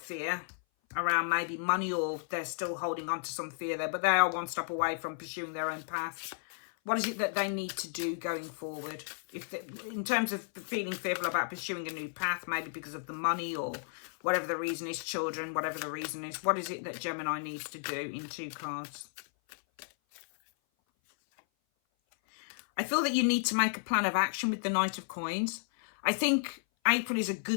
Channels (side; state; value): right; silent; 56 dB below the other